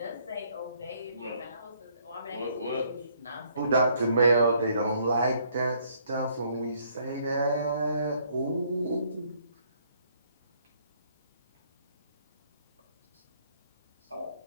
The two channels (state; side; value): inverted; both; correlation -0.66